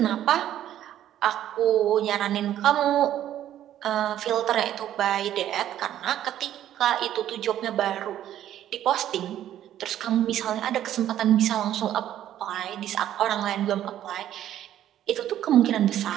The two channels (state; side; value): quieter; left; 11.7 dB